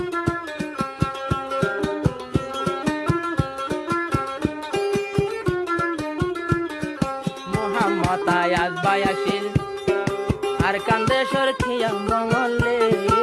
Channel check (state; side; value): identical; both; correlation 1.00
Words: মোহাম্মদ আয়াজ ভাই আসিল আর কান্দেশ্বর খিয়া মঙ্গলে